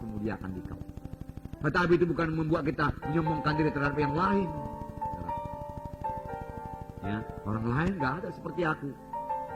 memuliakan dikau. Tetapi itu bukan membuat kita menyombongkan diri terhadap yang lain. Ya, orang lain gak ada seperti aku.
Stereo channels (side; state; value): both; identical; correlation 1.00